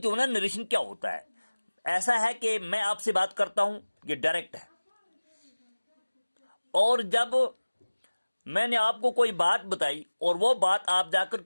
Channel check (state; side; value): inverted; both; correlation -1.00